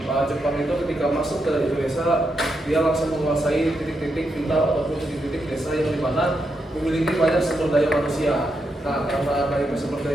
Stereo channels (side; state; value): both; normal; correlation 0.83